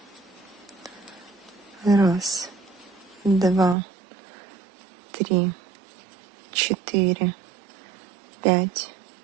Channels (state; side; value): drops out; left; at 3.8 s